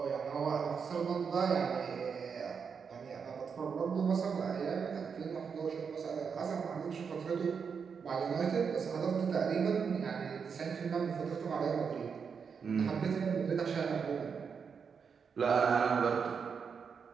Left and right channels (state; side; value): quieter; left; 6.2 dB